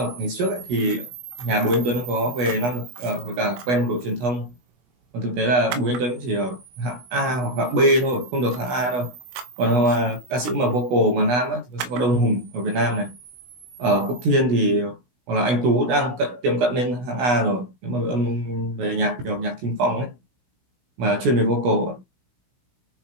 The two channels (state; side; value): late; left; 16 ms